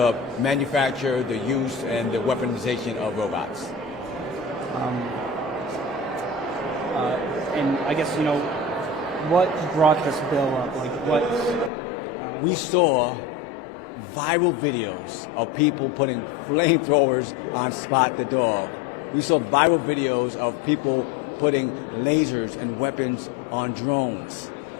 manufacture, the use, and the weaponization of robots. And I guess, what brought this bill up? Like, We saw viral videos of people putting flamethrowers on Spot the dog. We saw viral videos of people putting lasers and weapons on drones.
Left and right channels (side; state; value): right; drops out; at 11.7 s